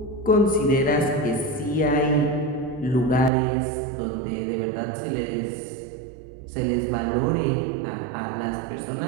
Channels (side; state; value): left; drops out; at 3.3 s